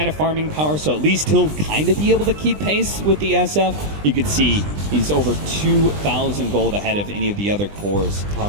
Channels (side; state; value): left; late; 20 ms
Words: of farming power, so at least he'll kind of be able to keep pace with the SF. You can see he's over 2,000 gold ahead of any of the other cores.